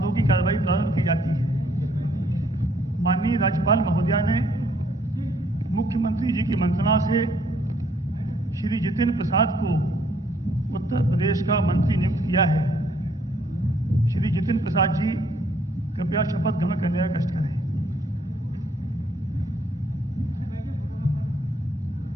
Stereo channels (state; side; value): normal; both; correlation 0.66